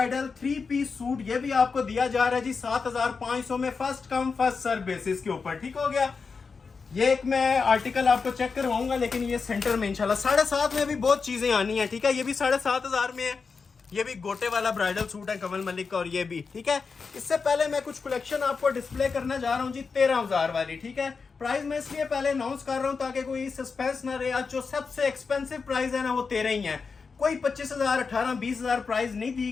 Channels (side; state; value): right; quieter; 5.0 dB